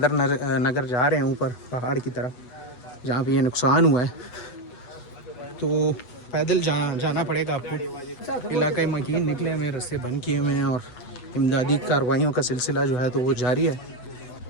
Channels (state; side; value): late; right; 8.2 ms